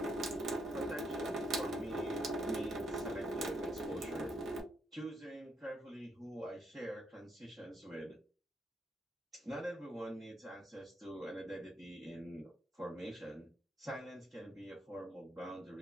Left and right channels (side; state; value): both; normal; correlation 0.77